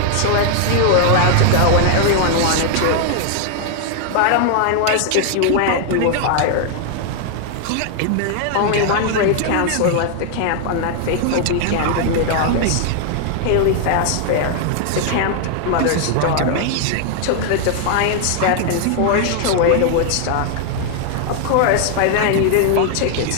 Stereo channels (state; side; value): different; both; correlation 0.00